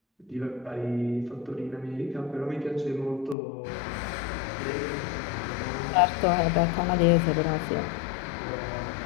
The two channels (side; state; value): right; drops out; at 3.4 s